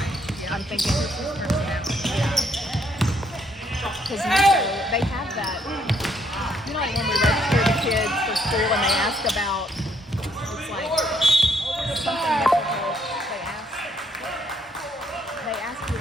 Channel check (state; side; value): normal; both; correlation 0.70